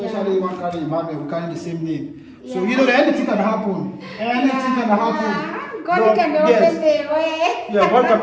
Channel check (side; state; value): both; identical; correlation 1.00